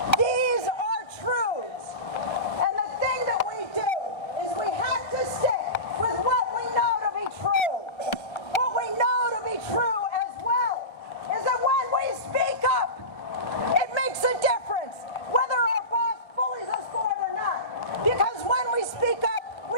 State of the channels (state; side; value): late; right; 1.3 ms